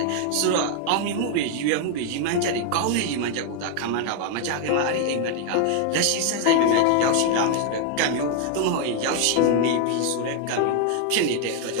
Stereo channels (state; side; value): different; both; correlation 0.00